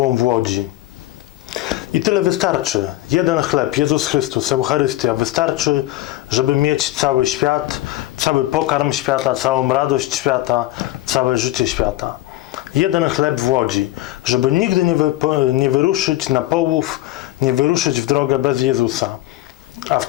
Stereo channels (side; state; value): right; quieter; 16.3 dB